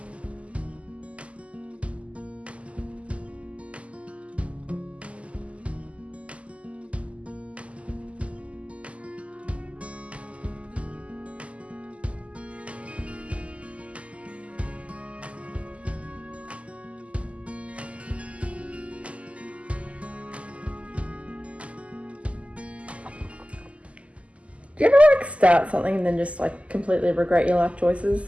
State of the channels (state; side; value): late; left; 0.062 ms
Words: Do you ever like start something and then just like completely regret your life choices?